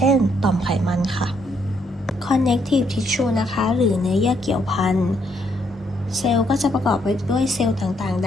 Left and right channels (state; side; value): normal; both; correlation 0.73